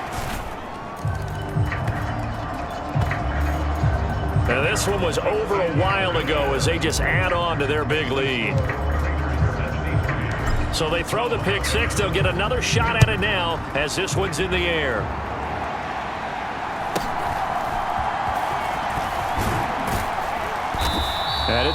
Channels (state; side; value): identical; both; correlation 1.00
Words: And this one was over a while ago as they just add on to their big lead. So they throw the pick six. They'll get another shot at it now as this one's in the air. And